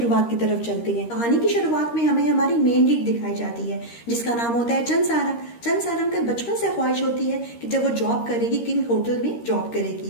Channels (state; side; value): late; right; 13 ms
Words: की तरफ चलते हैं। कहानी की शुरुआत में हमें हमारी मेन लीड दिखाई जाती है जिसका नाम होता है चंद सारंग। चंद सारंग का बचपन से ख्वाहिश होती है कि जब वो जॉब करेगी किंग होटल में जॉब